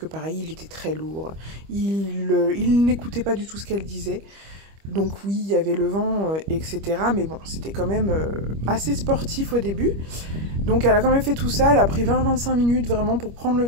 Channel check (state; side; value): late; left; 25 ms